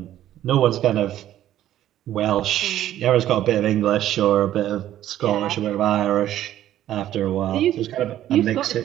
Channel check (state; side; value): quieter; left; 12.4 dB